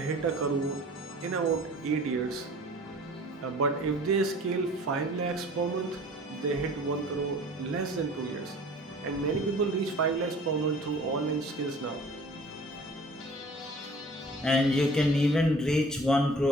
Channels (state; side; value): normal; both; correlation 0.47